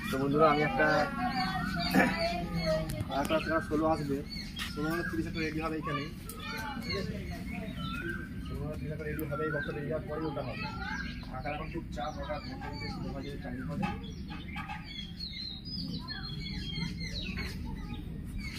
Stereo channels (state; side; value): identical; both; correlation 1.00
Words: তো বন্ধুরা, আমি একটা 16 আসবে, 16-30 একটা রেডি হবে এখানে, ঠিক আছে? 16-30 একটা রেডি হবে, এই বক্সটা রেডি হওয়ার পরে ওটা হবে। টাকার এখন খুব চাপ, ওটা টাইম হবে।